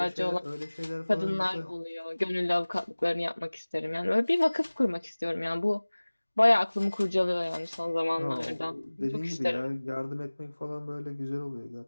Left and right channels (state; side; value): inverted; both; correlation -1.00